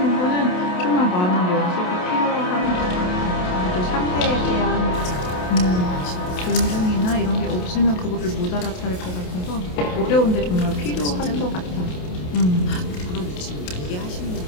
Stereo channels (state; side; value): late; right; 28 ms